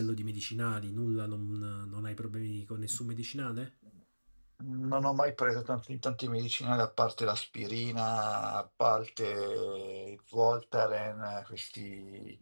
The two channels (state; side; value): inverted; both; correlation -1.00